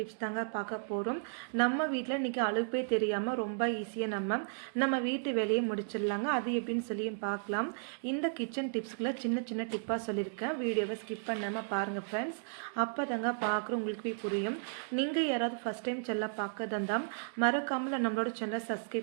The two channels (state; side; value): silent; left; digital silence